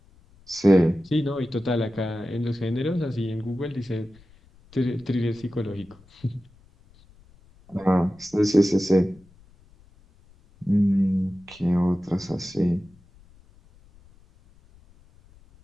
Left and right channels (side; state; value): left; noise; rumble, 28 dB below the sound